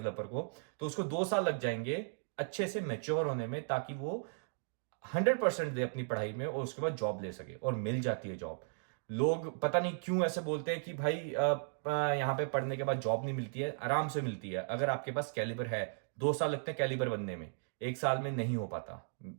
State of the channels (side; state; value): left; silent; digital silence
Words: को, तो उसको 2 साल लग जाएंगे अच्छे से मैच्योर होने में, ताकि वो 100% दे अपनी पढ़ाई में और उसके बाद जॉब ले सके, और मिल जाती है जॉब। लोग पता नहीं क्यों ऐसे बोलते हैं कि भाई यहाँ पे पढ़ने के बाद जॉब नहीं मिलती है। आराम से मिलती है अगर आपके पास कैलिबर है। 2 साल लगते हैं कैलिबर बनने में, 1 साल में नहीं हो पाता।